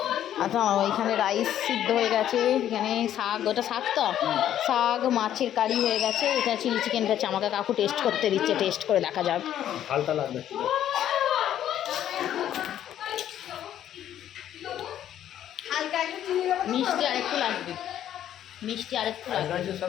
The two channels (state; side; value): quieter; right; 11.1 dB